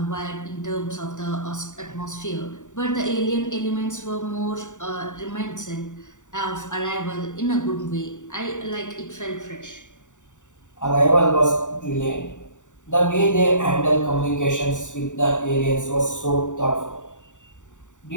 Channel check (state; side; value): late; right; 0.86 ms